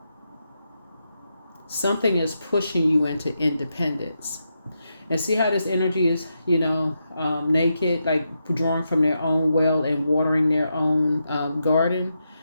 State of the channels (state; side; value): inverted; both; correlation -0.85